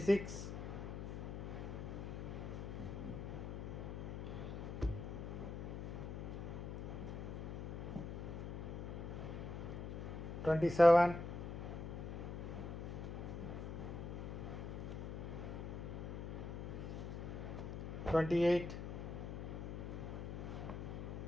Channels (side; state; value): left; noise; hum, 5 dB below the sound